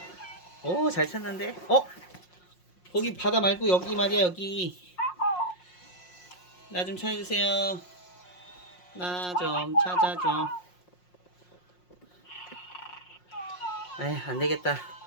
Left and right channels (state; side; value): late; right; 5.6 ms